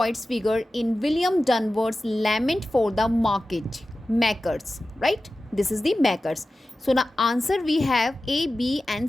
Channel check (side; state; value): both; normal; correlation 0.94